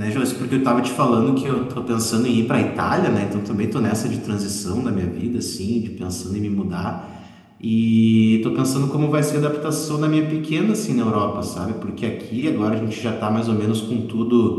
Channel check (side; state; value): both; identical; correlation 1.00